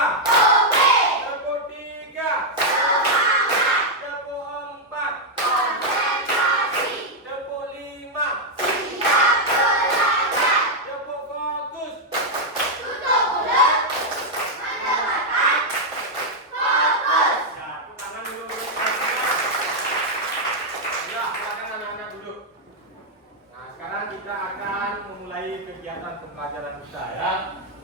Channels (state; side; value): normal; both; correlation -0.02